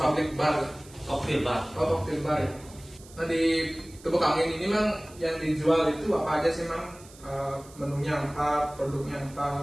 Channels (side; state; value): right; noise; hiss, 22 dB below the sound